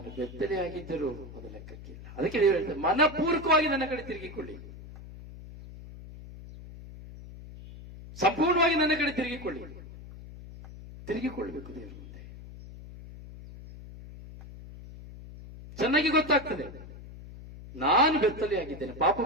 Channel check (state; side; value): noise; left; hum, 15 dB below the sound